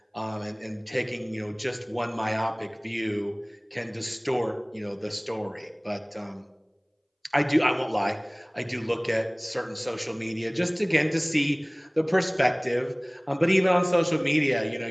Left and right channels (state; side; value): identical; both; correlation 1.00